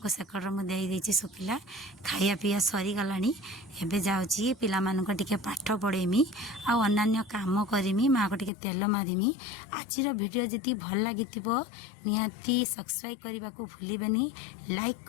सेकड़ मुझे शुखिला खाया पीया सरीगला। एबे जाऊँगी पिला टिके पाठ पढ़ेमी अन्य काम करमी माँ को टिके तेल मारिमी। आजिर वीडियो जी भल लगी निहाती सब्सक्राइब करने को भूलें लाइक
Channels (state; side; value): drops out; right; at 8.5 s